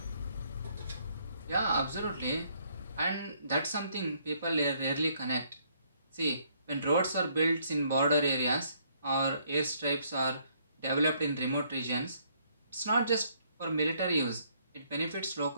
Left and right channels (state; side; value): inverted; both; correlation -0.67